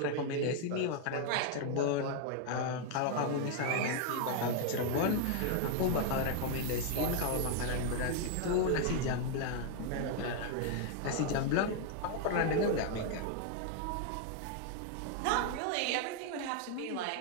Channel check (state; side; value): different; both; correlation 0.00